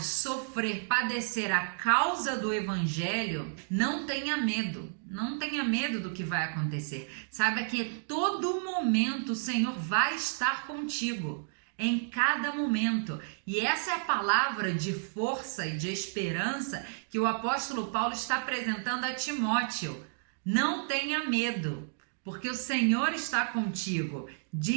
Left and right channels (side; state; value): left; silent; digital silence